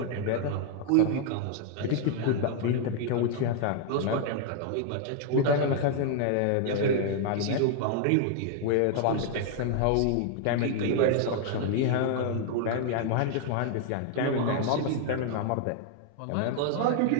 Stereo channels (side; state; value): both; different; correlation 0.00